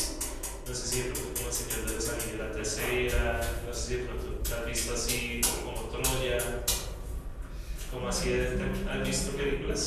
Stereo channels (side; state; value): both; identical; correlation 1.00